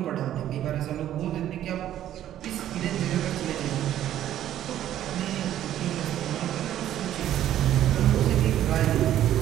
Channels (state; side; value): quieter; left; 11.9 dB